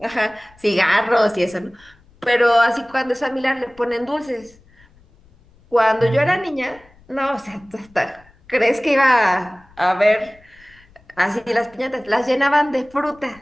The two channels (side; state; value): left; noise; rumble, 29 dB below the sound